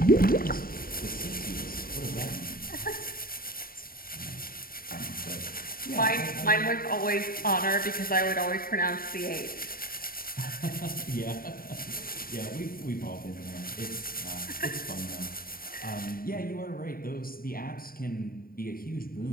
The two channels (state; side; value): late; right; 0.42 ms